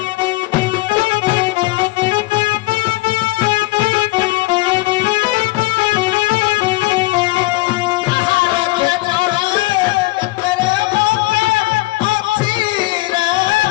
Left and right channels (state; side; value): quieter; right; 20.6 dB